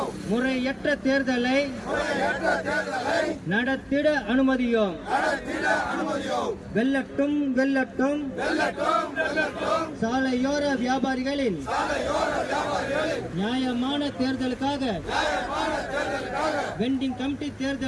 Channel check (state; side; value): identical; both; correlation 1.00